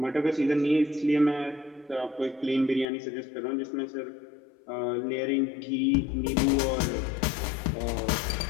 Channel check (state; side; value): drops out; right; at 2.9 s